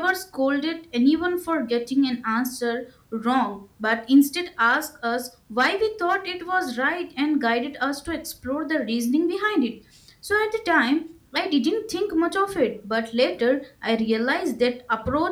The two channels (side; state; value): both; identical; correlation 1.00